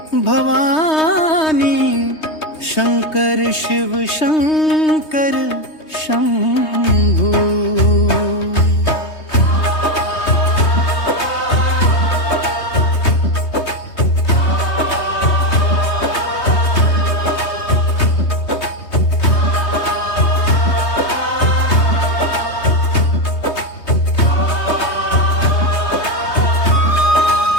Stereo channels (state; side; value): late; right; 3.2 ms